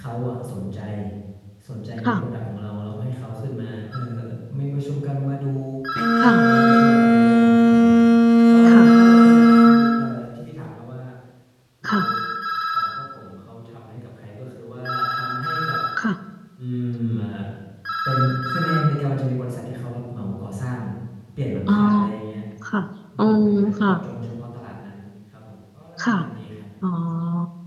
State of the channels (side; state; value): both; identical; correlation 1.00